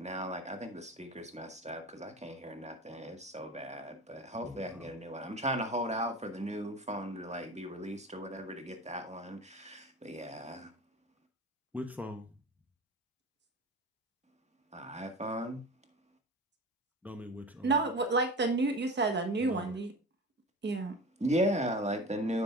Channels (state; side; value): normal; both; correlation 0.33